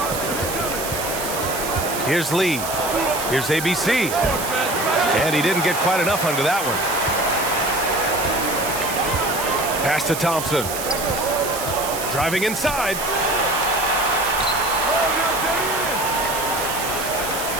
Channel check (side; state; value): right; noise; hiss, 6 dB below the sound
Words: Here's Lee. Here's ABC. And he didn't get quite enough under that one. Pass to Thompson. Driving inside.